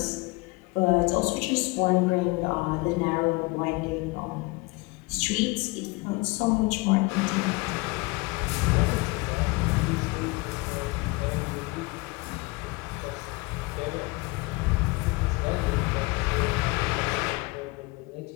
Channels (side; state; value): right; quieter; 25.0 dB